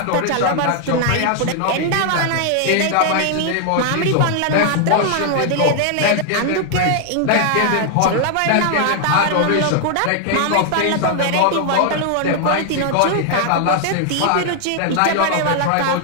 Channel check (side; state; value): both; different; correlation 0.00